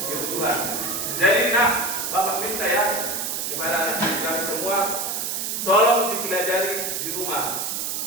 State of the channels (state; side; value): noise; right; hiss, 2 dB below the sound